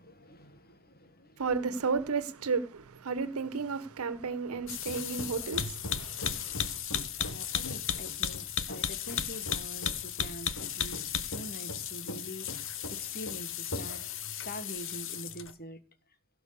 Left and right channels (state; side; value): normal; both; correlation -0.02